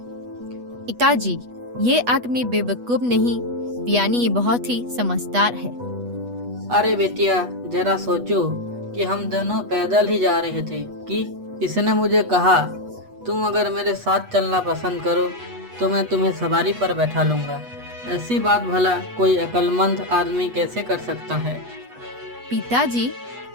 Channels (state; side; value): late; left; 8.2 ms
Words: पिताजी, ये आदमी बेवकूफ नहीं, यानी ये बहुत ही समझदार है। अरे बेटिया, जरा सोचो कि हम दोनों पैदल ही जा रहे थे कि इसने मुझे कहा तुम अगर मेरे साथ चलना पसंद करो तो मैं तुम्हें सवारी पर बैठा लूंगा। ऐसी बात भला कोई अक्लमंद आदमी कैसे कर सकता है। पिताजी,